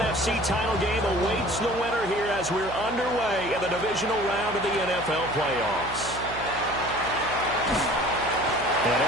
title game awaits the winner here as we're underway in the divisional round of the NFL playoffs. And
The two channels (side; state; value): right; noise; hum, 13 dB below the sound